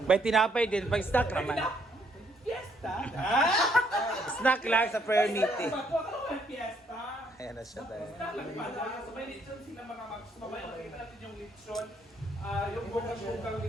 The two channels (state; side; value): normal; both; correlation 0.70